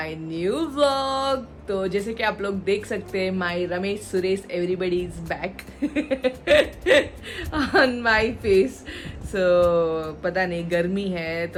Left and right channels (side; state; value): both; identical; correlation 1.00